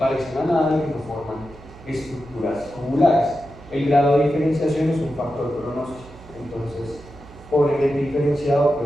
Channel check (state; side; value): noise; right; hum, 20 dB below the sound